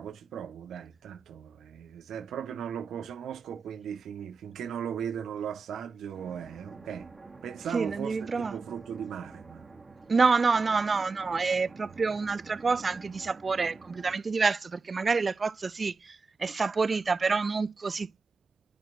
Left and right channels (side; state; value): left; quieter; 4.4 dB